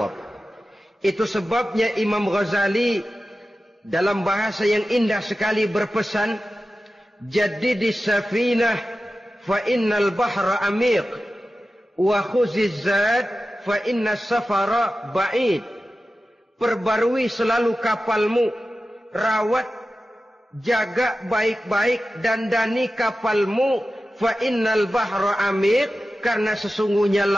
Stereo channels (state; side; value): normal; both; correlation 0.94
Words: Itu sebabnya Imam Ghazali dalam bahasa yang indah sekali berpesan, "Jaddidis safinah fa innal bahra amiq wa khuziz zad fa innas safara ba'id." Perbarui selalu kapalmu, rawat, jaga baik-baik, dandani kapalmu, fa innal bahra amiq, karena sesungguhnya